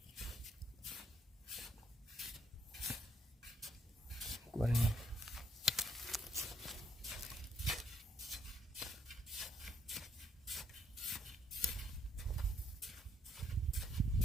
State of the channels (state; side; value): normal; both; correlation 0.70